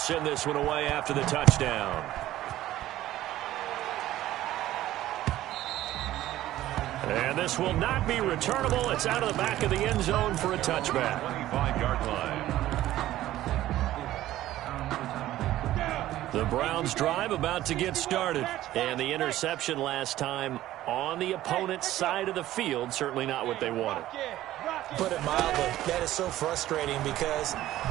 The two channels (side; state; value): left; quieter; 14.4 dB